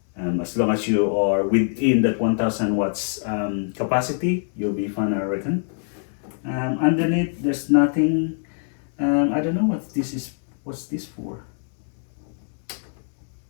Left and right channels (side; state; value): right; silent; digital silence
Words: As long as you are within that 1,000 watts capacity, you'll be fine, I reckon. Underneath there's nothing. I don't know what this is. What's this for?